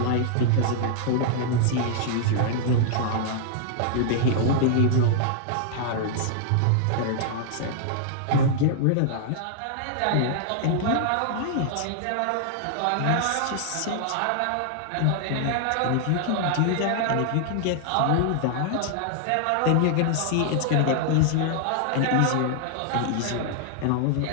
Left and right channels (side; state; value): both; different; correlation 0.00